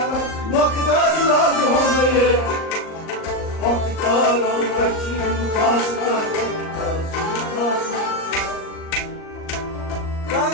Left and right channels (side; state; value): right; late; 38 ms